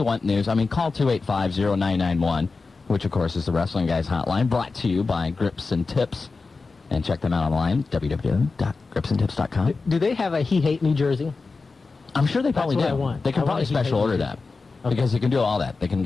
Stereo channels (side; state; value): right; quieter; 4.1 dB